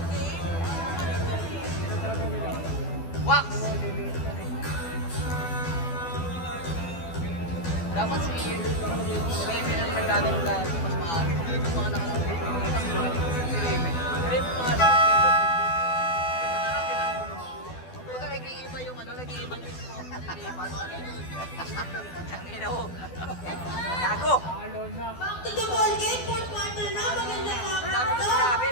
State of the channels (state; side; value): late; right; 12 ms